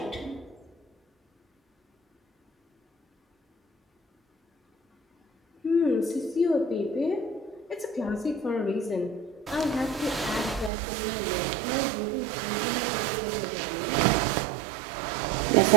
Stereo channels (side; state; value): left; drops out; at 10.7 s